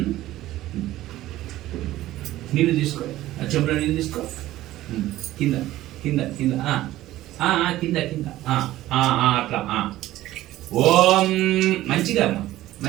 నీళ్ళు తీసుకో, చెంబులో నీళ్ళు తీసుకో. కింద కింద కింద కింద కింద అట్లా. ఓం మంచిగా అమ్మా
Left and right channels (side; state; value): left; quieter; 15.3 dB